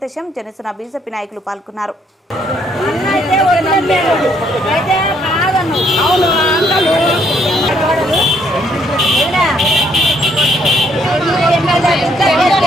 జనసేన బీజేపీ నాయకులు పాల్గొన్నారు.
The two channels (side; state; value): both; normal; correlation 0.68